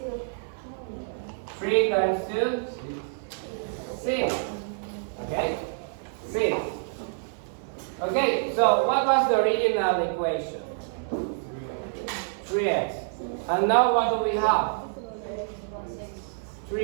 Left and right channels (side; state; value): left; silent; 60 dB below the other